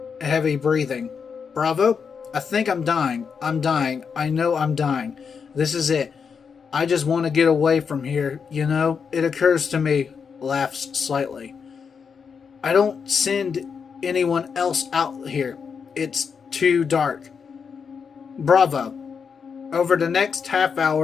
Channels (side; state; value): right; quieter; 6.1 dB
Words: heavy breathing. Bravo? I think I'm dying. I'm dying. I know I'm dying. This is it. I just want to get away from here. You know, it occurs to me. Laughs slightly. I don't send anyone else out here. It's too dark. Bravo. Over the next half